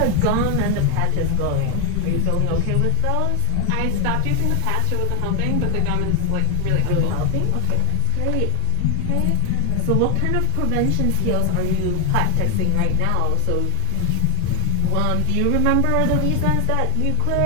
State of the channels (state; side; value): different; both; correlation 0.01